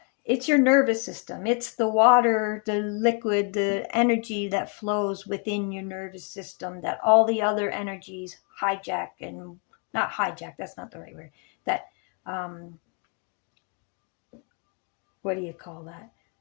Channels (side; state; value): right; quieter; 35.7 dB